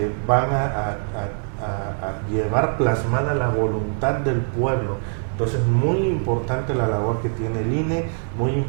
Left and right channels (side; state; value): left; silent; digital silence